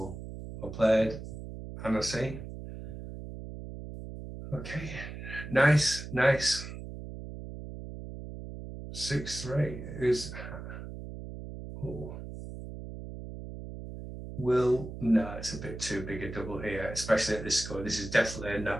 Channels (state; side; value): noise; right; hum, 10 dB below the sound